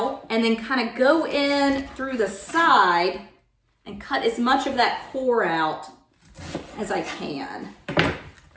and then kind of go in through the side and cut as much of that core out as I can.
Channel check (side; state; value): both; identical; correlation 1.00